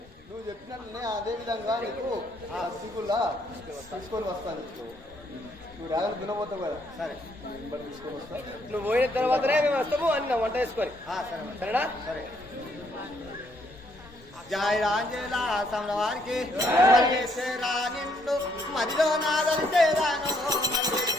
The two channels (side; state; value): both; normal; correlation 0.70